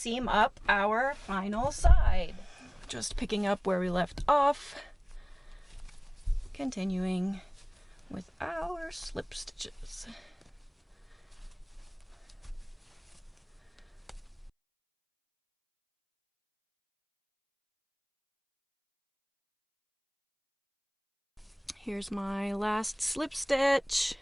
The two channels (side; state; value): both; identical; correlation 1.00